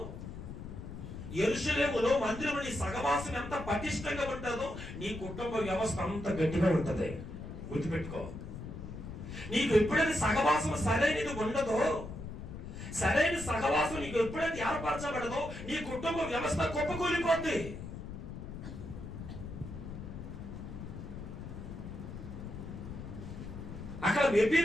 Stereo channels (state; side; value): noise; left; rumble, 9 dB below the sound